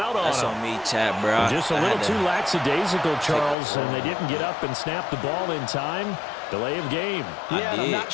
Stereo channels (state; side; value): drops out; right; at 3.6 s